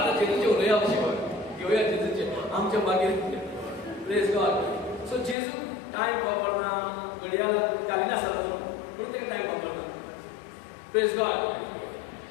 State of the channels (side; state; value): right; drops out; at 5.4 s